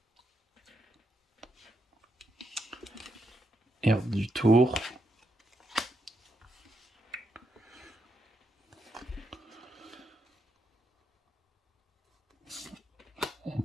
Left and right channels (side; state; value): both; normal; correlation 0.81